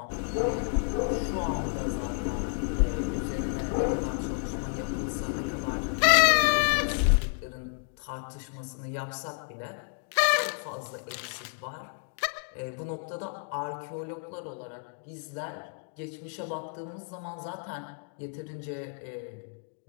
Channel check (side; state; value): right; silent; 57 dB below the other